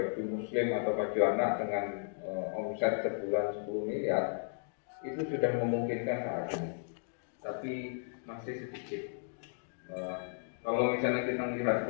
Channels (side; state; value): right; silent; digital silence